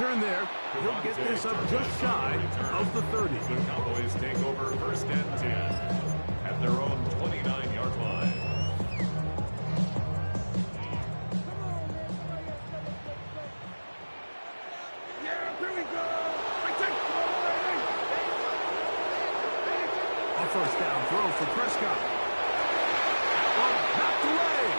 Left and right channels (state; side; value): inverted; both; correlation -1.00